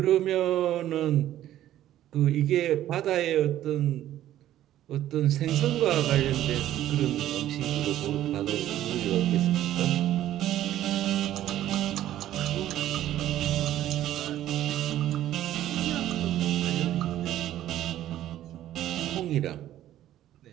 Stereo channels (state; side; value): quieter; left; 12.8 dB